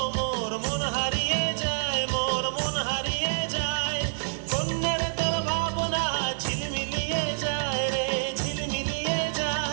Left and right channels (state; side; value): silent; left; digital silence